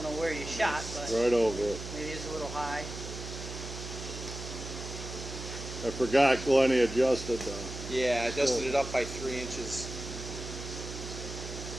know where you shot, but Right over it. maybe it's a little high. I forgot Glennie adjusted them. Yeah, I adjusted it up by 3 inches.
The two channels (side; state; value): right; noise; hum, 9 dB below the sound